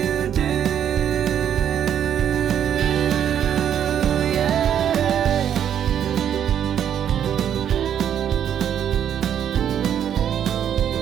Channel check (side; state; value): left; quieter; 9.4 dB